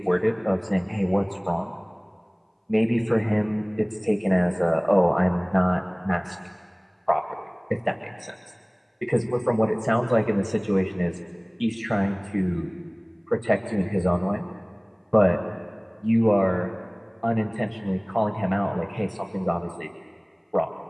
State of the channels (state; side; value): identical; both; correlation 1.00